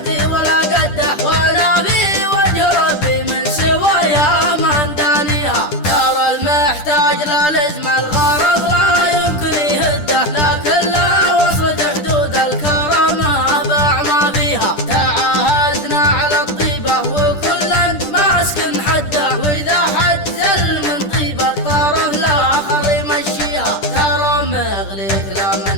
ولا قده، وانا في وجه ربي من سوايا ما ندانيها. ترى المحتاج لا لزم الغرض لا يمكن يهده، لكن لا وصلت حدود الكرامه باع ما فيها. تعاهدنا على الطيبه وكلا ماسك حده، واذا حد زل من طيبه الطرف الاخر يمشيها. ترى مغليك لا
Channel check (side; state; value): right; late; 10 ms